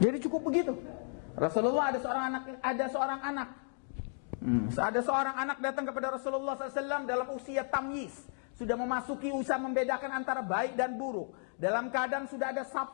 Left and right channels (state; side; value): silent; right; 55 dB below the other